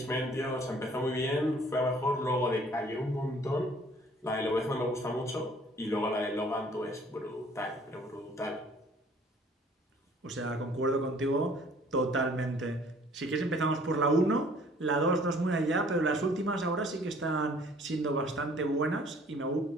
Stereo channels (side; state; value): both; normal; correlation 0.55